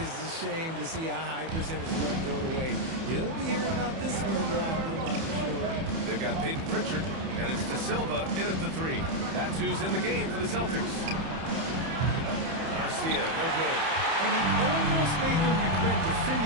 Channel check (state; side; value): late; left; 31 ms